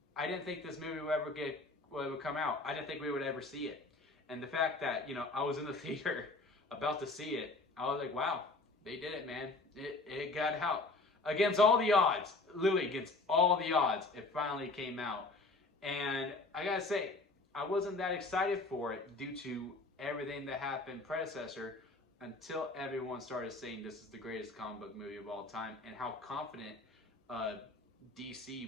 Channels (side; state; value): right; quieter; 3.3 dB